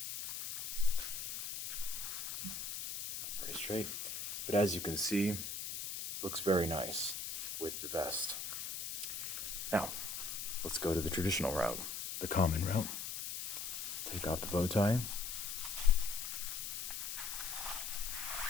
Very straight. But as you can see, looks very nice with the vest. Now, let's go to the traditional route, the common route. Take off the bow tie.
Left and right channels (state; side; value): noise; left; hiss, 5 dB below the sound